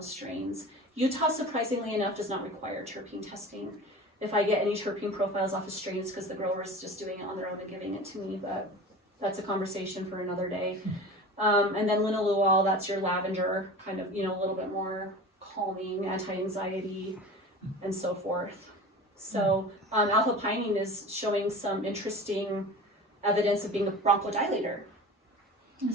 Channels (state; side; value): normal; both; correlation 0.35